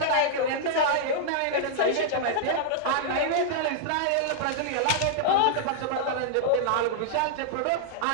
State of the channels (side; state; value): both; different; correlation -0.01